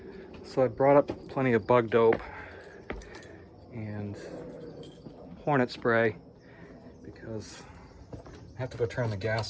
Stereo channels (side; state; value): both; identical; correlation 1.00